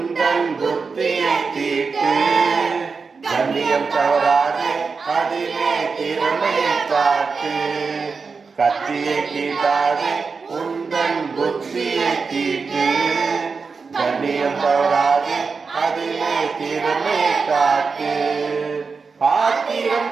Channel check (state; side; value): quieter; left; 4.9 dB